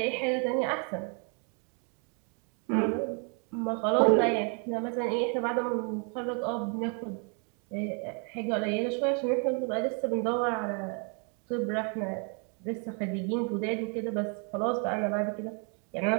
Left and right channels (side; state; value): left; quieter; 38.2 dB